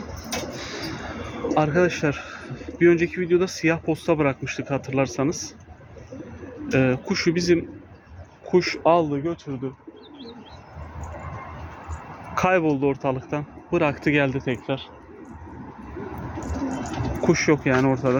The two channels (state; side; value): identical; both; correlation 1.00